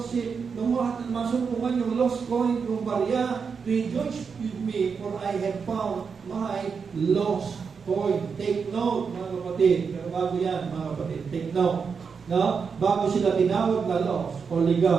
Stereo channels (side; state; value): left; quieter; 5.8 dB